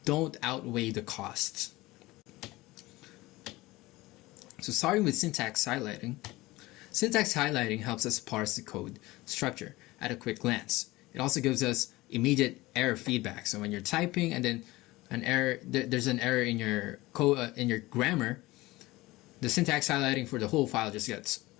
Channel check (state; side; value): quieter; right; 19.7 dB